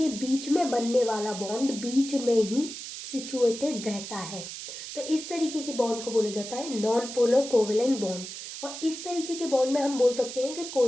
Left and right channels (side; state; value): right; noise; hiss, 9 dB below the sound